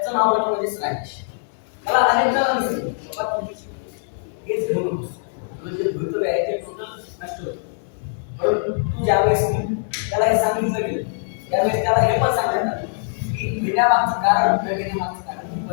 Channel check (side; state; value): right; silent; 64 dB below the other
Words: नाव म्हणजे राजेश. त्याला अनेक जणांनी सांगितलं बाबा तुम्ही केस घेऊ नको, तुझं जे भवितव्य आहे ते टोटल नष्ट होतं. परंतु तू ज्यावेळेस त्याला हे सांगितलं गेलं त्यावेळेस त्याला हे पण सांगण्यात आलं की घेण्यामागचं कारण न घेण्यामागचं कारण